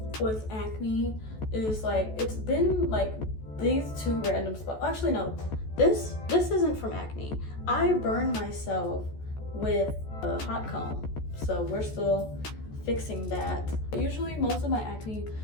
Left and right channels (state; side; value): late; right; 14 ms